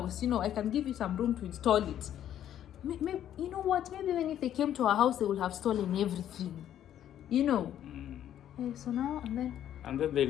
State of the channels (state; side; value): quieter; right; 10.9 dB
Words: You know, I can give you some room to install it." Maybe, you know what? Maybe even if they came to our house, they would have stolen everything. You know. So now and then they